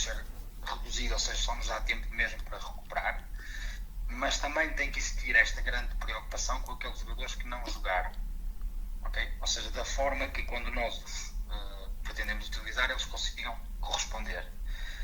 ser reduzido, ou seja, só nos dá tempo mesmo para recuperar, mas também tem que existir esta grande preocupação com aqueles jogadores que não jogaram, ok? Ou seja, da forma que quando nós os pretendemos utilizar, eles consigam corresponder.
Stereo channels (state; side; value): identical; both; correlation 1.00